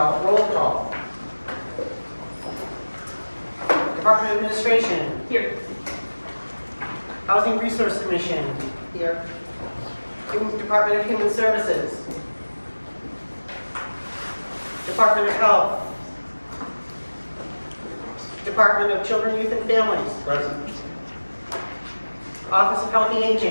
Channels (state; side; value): inverted; both; correlation -1.00